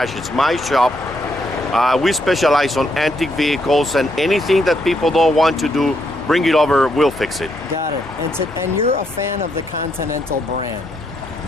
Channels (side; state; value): both; normal; correlation 0.76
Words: It's my shop. We specialize on antique vehicles, and anything that people don't want to do, bring it over, we'll fix it. Got it. And you're a fan of the Continental brand.